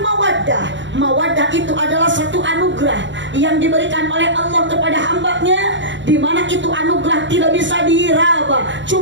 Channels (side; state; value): left; late; 0.54 ms